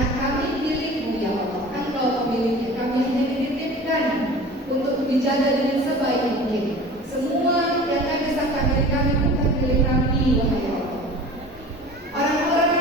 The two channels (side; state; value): both; normal; correlation 0.40